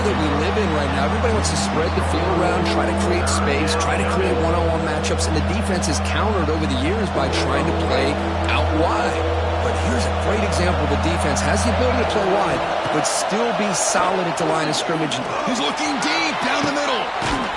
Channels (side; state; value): both; identical; correlation 1.00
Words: we live in right now, everybody wants to spread the field around, try to create space, try to create one-on-one matchups, and the defense is countered over the years by trying to play out wide. But here's a great example. The defense has the ability to play wide, but still be solid at the line of scrimmage. He's looking deep down the middle.